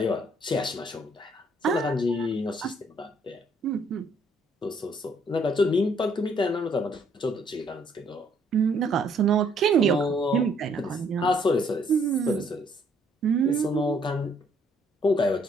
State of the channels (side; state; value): both; normal; correlation 0.66